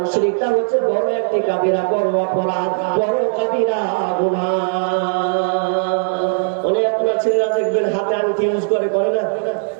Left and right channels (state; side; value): silent; left; digital silence